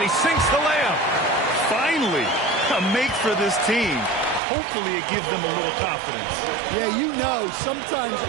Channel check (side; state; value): left; drops out; at 4.4 s